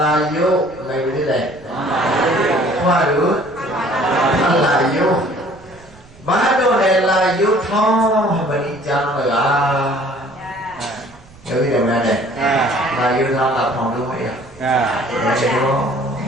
လာယုမေဝိလေခွာလူလာယုဘာတော့လေလာယုထောင်းမဏိကျမ်းလကားယောဂီတော်များနဲ့လာယုထောင်းလာထောင်းလို့မရအဲဒီတော့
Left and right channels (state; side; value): noise; right; rumble, 24 dB below the sound